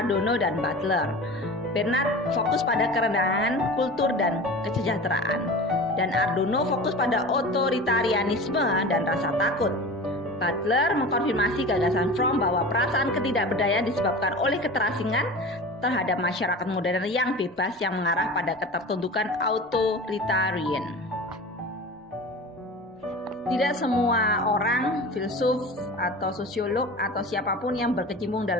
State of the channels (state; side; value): normal; both; correlation 0.34